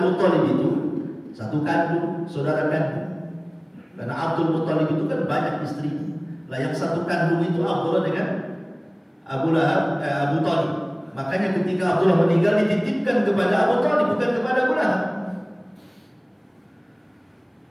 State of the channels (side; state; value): both; identical; correlation 1.00